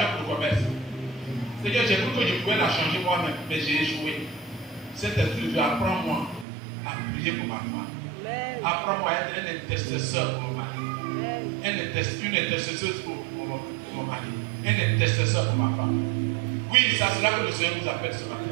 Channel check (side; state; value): left; drops out; at 6.5 s